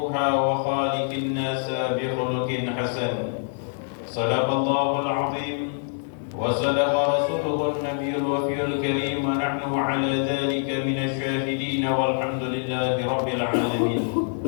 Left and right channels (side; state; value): right; silent; digital silence